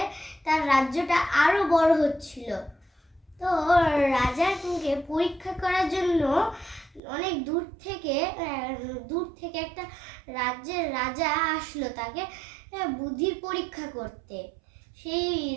তার রাজ্যটা আরো বড় হচ্ছিল। তো রাজাকে পরীক্ষা করার জন্য অনেক দূর থেকে একটা রাজ্যের রাজা আসলো তাকে বুদ্ধির পরীক্ষা করতে। সেই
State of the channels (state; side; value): drops out; left; at 7.0 s